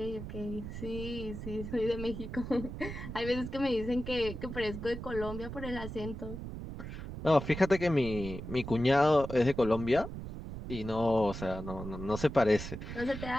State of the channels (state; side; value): noise; right; rumble, 8 dB below the sound